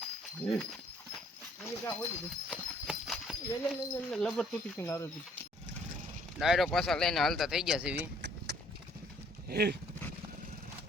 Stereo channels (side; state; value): both; normal; correlation 0.62